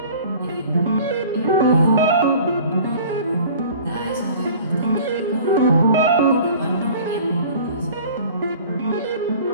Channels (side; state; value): both; inverted; correlation -0.45